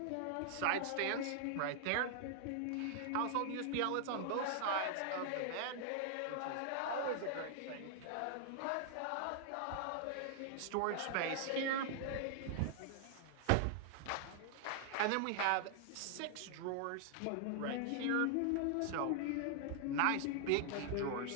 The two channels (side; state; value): both; different; correlation -0.01